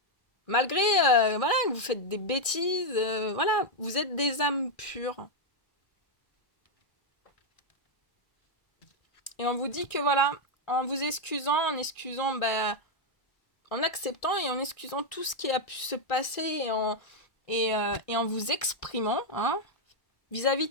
Malgré, voilà, que vous faites des bêtises, voilà, vous êtes des âmes pures. Et on vous dit que voilà, en vous excusant, bah, en acceptant et en excusant tout ce qui a pu se passer et en vous exprimant, hein, vis-à-vis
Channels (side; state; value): right; late; 1.6 ms